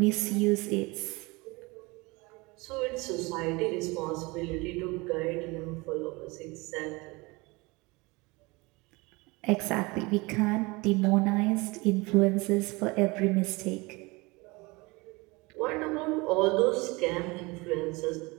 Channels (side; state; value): left; quieter; 24.9 dB